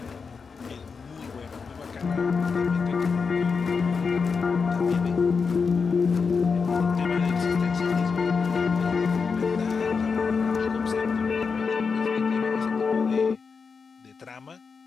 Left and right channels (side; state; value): right; quieter; 5.3 dB